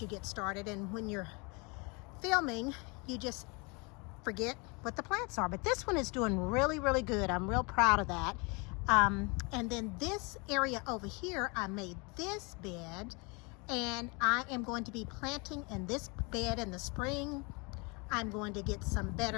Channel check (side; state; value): right; quieter; 30.2 dB